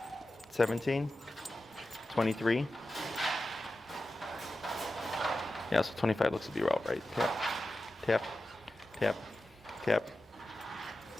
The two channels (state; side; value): normal; both; correlation 0.93